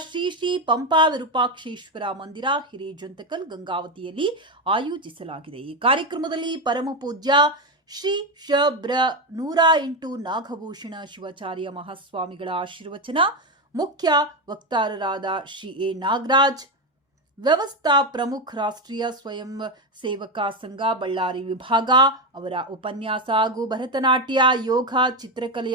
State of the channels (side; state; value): both; normal; correlation 0.12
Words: ಶ್ರೀ ಶ್ರೀ ಪಂಪಾ ವಿರೂಪಾಕ್ಷೇಶ್ವರ ಮಂದಿರ ಹಿರೇಜಂತಕಲ್ ಗಂಗಾವತಿಯಲ್ಲಿ ಆಯೋಜಿಸಲಾಗಿದೆ. ಈ ಕಾರ್ಯಕ್ರಮದಲ್ಲಿ ಪರಮ ಪೂಜ್ಯ ಶ್ರೀ ಶಬ್ರ 108 ನಾಗಭೂಷಣ ಶಿವಾಚಾರ್ಯ ಮಹಾಸ್ವಾಮಿಗಳ ಆಶೀರ್ವಚನ, ಮುಖ್ಯ ವಕ್ತಾರರಾದ ಶ್ರೀ ಎ ನಾಗರಾಜ್, ವ್ಯವಸ್ಥಾ ಪ್ರಮುಖ ರಾಷ್ಟ್ರೀಯ ಸ್ವಯಂ ಸೇವಕ ಸಂಘ ಬಳ್ಳಾರಿ ವಿಭಾಗ ಅವರ ಉಪನ್ಯಾಸ ಹಾಗೂ ಭರತನಾಟ್ಯ, ಯೋಗ, ಚಿತ್ರಕಲೆ